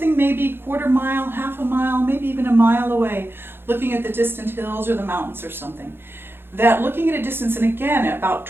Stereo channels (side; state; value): left; late; 0.11 ms